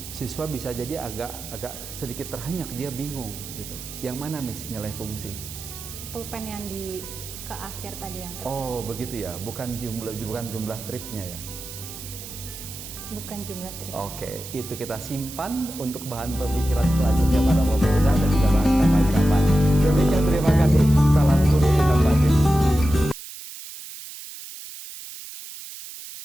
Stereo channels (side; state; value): right; noise; hiss, 12 dB below the sound